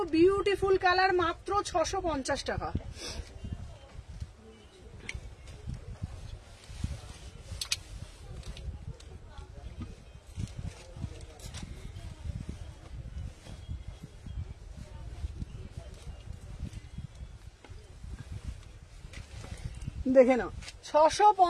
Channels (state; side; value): identical; both; correlation 1.00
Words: বিউটিফুল কালার, মাত্র 650 টাকা। দেখে নাও